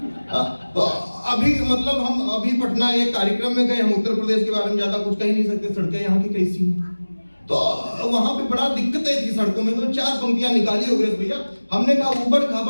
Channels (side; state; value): both; inverted; correlation -1.00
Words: तो अभी मतलब हम अभी पटना एक कार्यक्रम में गए, हम उत्तर प्रदेश के बारे में ज्यादा कुछ कह नहीं सकते, सड़कें यहाँ की कैसी हैं। तो वहां पे बड़ा दिक्कतें थी सड़कों में, तो 4 पंक्तियां निकाली हो गई भैया। हमने कहा ऊबड़